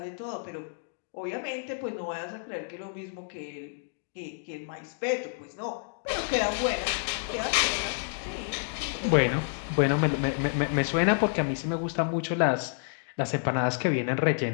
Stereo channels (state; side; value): silent; right; digital silence